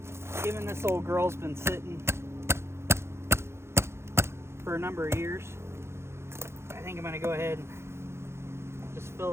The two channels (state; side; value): late; left; 0.13 ms